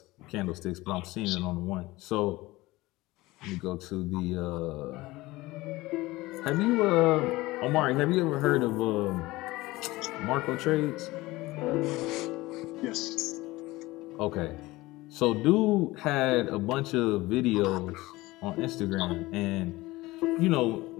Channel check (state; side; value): quieter; right; 19.8 dB